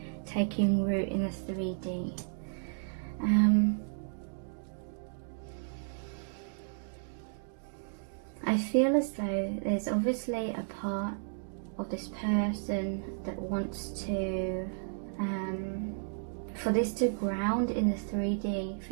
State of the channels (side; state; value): left; silent; digital silence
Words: taking root in the 3D. I feel as though there's obviously a part of this person that wants to, for this to ground in the 3D,